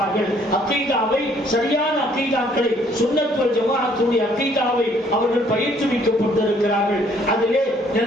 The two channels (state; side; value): normal; both; correlation 0.63